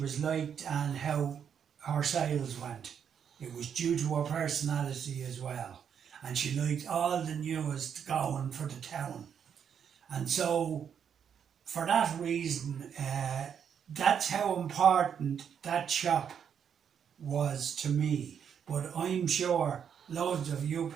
was liked and how her sales went. It was due to her personality as well, and she liked all the newest going for the town. And so for that reason, that's how important that shop was to me. But I'm sure loads of you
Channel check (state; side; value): quieter; left; 7.9 dB